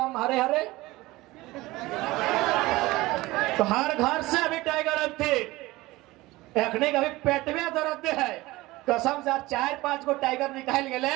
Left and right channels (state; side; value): quieter; left; 19.6 dB